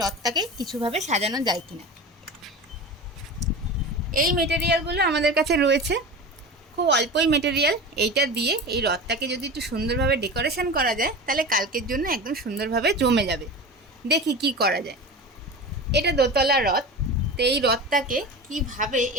রথটাকে কিছুভাবে সাজানো যায় কিনা। এই মেটেরিয়ালগুলো আমাদের কাছে রয়েছে, খুব অল্পই মেটেরিয়াল। এইটা দিয়ে এই রথটাকে যদি একটু সুন্দরভাবে ডেকোরেশন করা যায় তাহলে কালকের জন্য একদম সুন্দরভাবে জমে যাবে। দেখি কি করা যায়। এটা দোতলা রথ, তো এই রথটাকে কিভাবে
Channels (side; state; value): both; normal; correlation 0.30